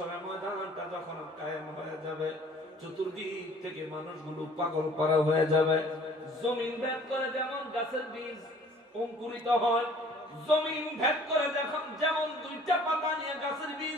ময়দানটা যখন কায়েম হয়ে যাবে, চতুর্দিক থেকে মানুষগুলো পাগল পারা হয়ে যাবে। জমিন ভেদ করে যেমন গাছের বীজ অঙ্কুরিত হয়, জমিন ভেদ করে যেমন দুইটা পাতা নিয়ে গাছের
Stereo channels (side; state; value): both; normal; correlation 0.53